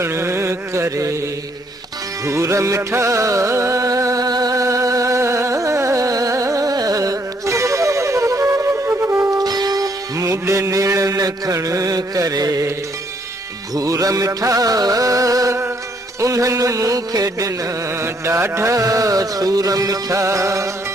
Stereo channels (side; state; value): both; normal; correlation 0.69